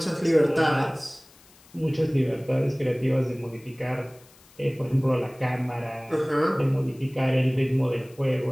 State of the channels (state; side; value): noise; left; hiss, 27 dB below the sound